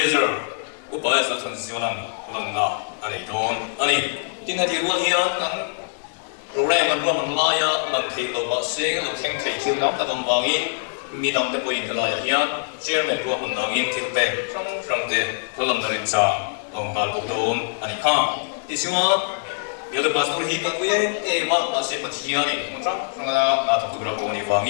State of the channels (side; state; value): right; silent; digital silence